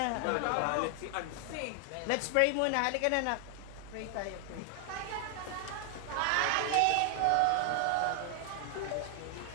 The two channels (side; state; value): both; different; correlation 0.00